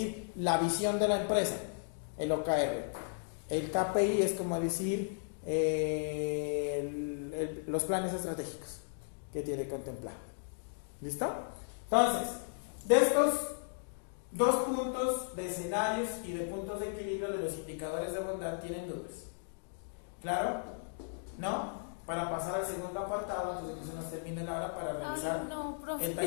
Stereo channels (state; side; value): silent; right; digital silence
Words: la visión de la empresa, el OKR. El KPI es como decir los planes estratégicos que tiene que contemplar. ¿Listo? Entonces, de estos dos puntos de escenarios y de puntos de equilibrio de los indicadores de bondad, ¿tienen dudas? ¿Claro? ¿No? Para pasar al segundo apartado, antes de que se nos termine la hora para realizar el